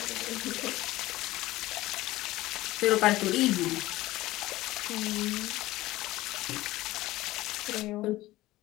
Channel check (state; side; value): quieter; right; 17.5 dB